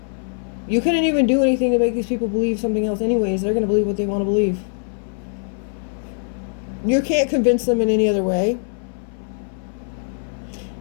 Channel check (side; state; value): right; silent; 62 dB below the other